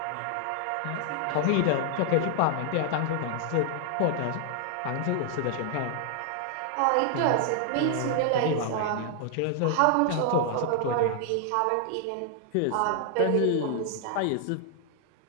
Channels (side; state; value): both; different; correlation 0.00